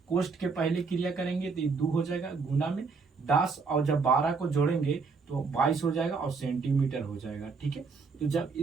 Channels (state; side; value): quieter; left; 4.7 dB